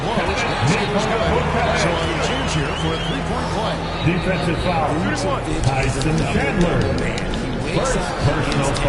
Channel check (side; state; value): both; identical; correlation 1.00